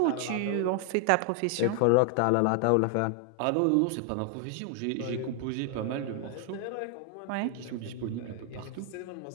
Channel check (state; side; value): different; both; correlation 0.00